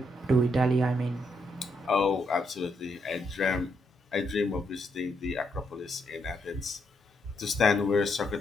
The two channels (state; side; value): normal; both; correlation 0.77